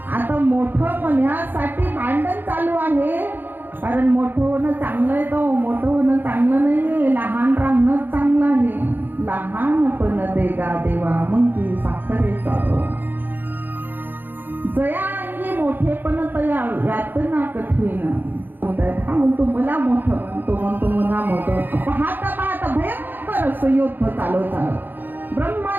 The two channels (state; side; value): late; left; 0.091 ms